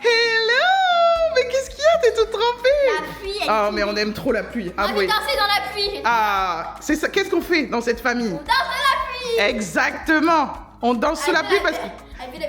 Hello! Mais qu'est-ce qu'il y a? T'es toute trempée. la pluie, elle Ah, est mais on aime trop la pluie. On Ah veut oui. danser dans la pluie. Ah, c'est ça. Qu'est-ce qu'on fait dans cette famille? On danse dans la pluie. Exactement. On danse sous la pluie parce que... Elle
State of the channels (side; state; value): both; identical; correlation 1.00